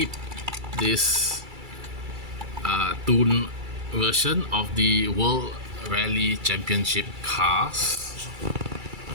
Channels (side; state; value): left; late; 2.3 ms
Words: this tuned version of the World Rally Championship cars.